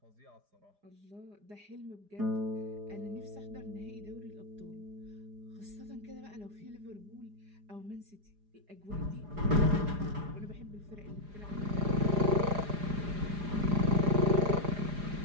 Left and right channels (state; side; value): late; left; 4.9 ms